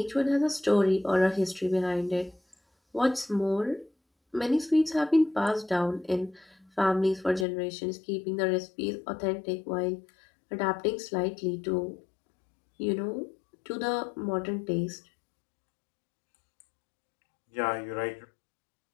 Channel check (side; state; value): right; drops out; at 7.5 s